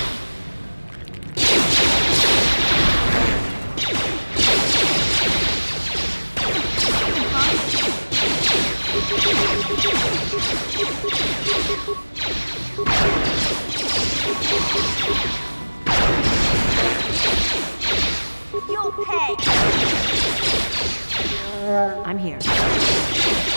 pay! I'm here.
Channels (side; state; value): both; inverted; correlation -1.00